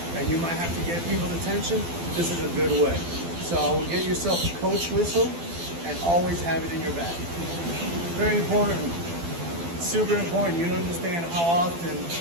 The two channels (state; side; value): late; left; 12 ms